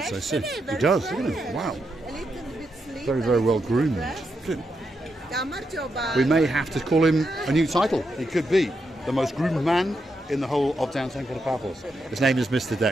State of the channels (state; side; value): normal; both; correlation 0.83